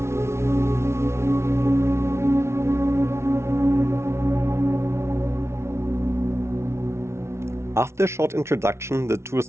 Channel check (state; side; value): late; left; 0.13 ms